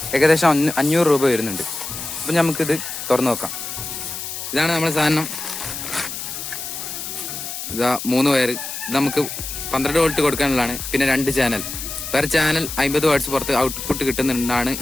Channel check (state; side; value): noise; left; hiss, 7 dB below the sound